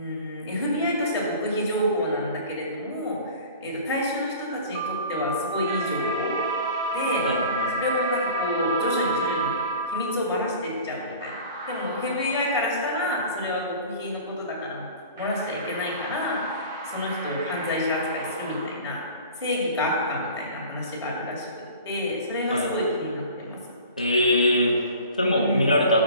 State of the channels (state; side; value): inverted; both; correlation -0.42